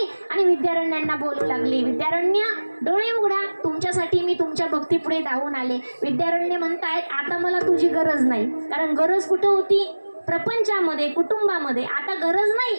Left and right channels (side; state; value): both; inverted; correlation -1.00